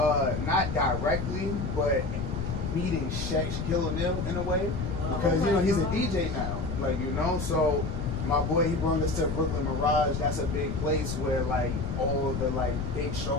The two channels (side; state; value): left; noise; rumble, 4 dB below the sound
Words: not directly, but meeting Shaquille O'Neal in a way, because you know he's a DJ now, like, you know. So my boy, he brought us to Brooklyn Mirage. That's a big place where like all the like big